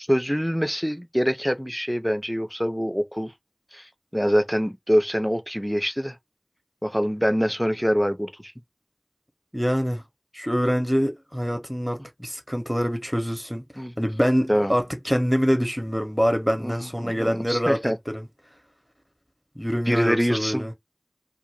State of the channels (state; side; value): identical; both; correlation 1.00